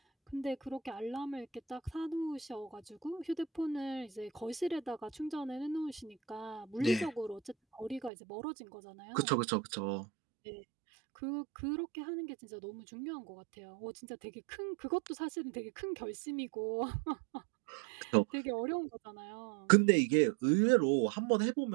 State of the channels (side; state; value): left; drops out; at 8.1 s